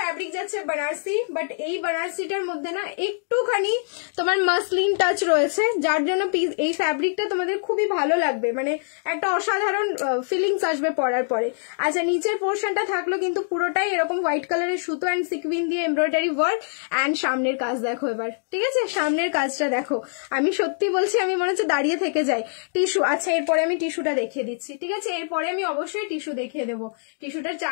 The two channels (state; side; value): silent; right; digital silence